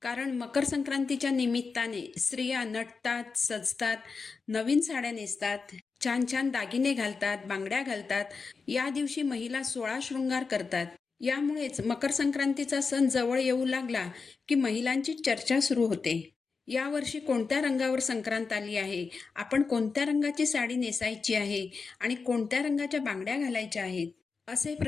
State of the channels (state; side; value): quieter; right; 4.8 dB